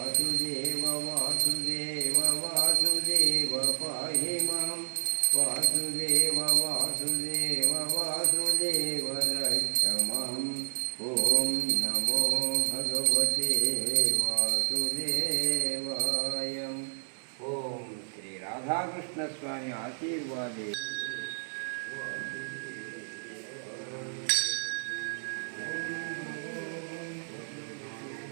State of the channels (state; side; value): silent; left; digital silence